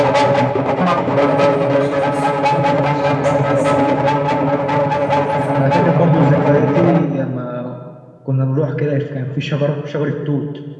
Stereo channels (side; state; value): both; identical; correlation 1.00